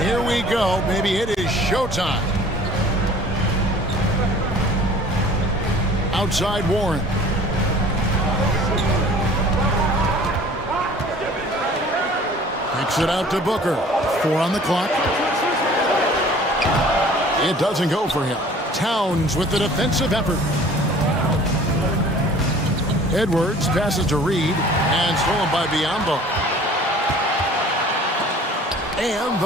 here we go. Maybe it is showtime. Outside Warren. Kicks it out to Booker. 4 on the clock. It doesn't go for him. Towns with the defensive effort. Edwards passes to Reed and stolen by Biyombo. And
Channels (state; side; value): normal; both; correlation 0.49